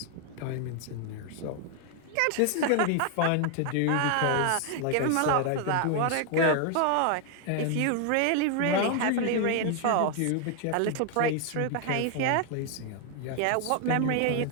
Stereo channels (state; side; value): different; both; correlation 0.00